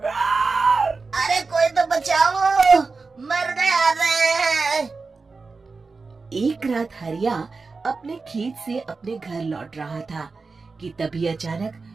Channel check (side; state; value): left; quieter; 4.2 dB